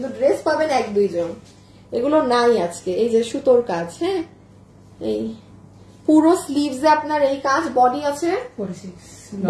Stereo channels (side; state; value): both; identical; correlation 1.00